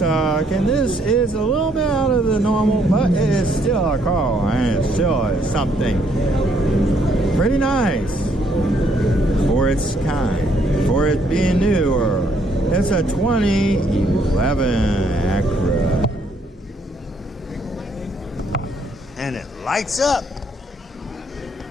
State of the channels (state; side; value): normal; both; correlation 0.69